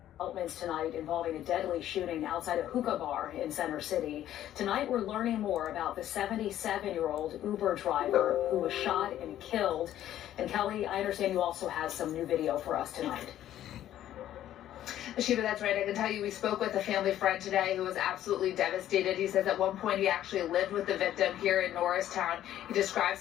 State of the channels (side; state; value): right; quieter; 12.1 dB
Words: Developments tonight involving a deadly shooting outside a hookah bar in Center City. Tonight we're learning more about the 77-year-old Uber driver who was shot and killed. And Kelly, I understand you also have some new video for us tonight. Shiva, that's right. I can tell you we spoke with a family friend today who was absolutely devastated. He says at one point he actually lived with the victim here in Norristown. He describes